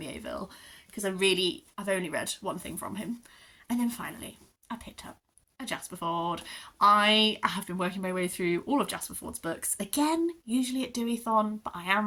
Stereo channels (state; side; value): identical; both; correlation 1.00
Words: because I've only read one thing from him. And then finally, I picked up a Jasper Fforde. I have been working my way through all of Jasper Fforde's books. Again, usually at Deweython, but I